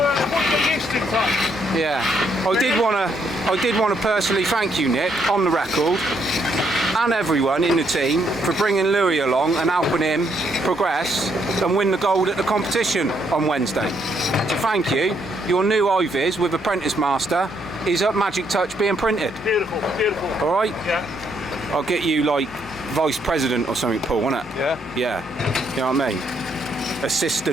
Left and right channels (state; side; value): normal; both; correlation 0.73